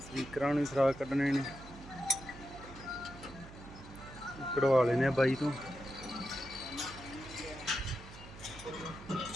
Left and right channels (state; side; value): noise; right; hum, 16 dB below the sound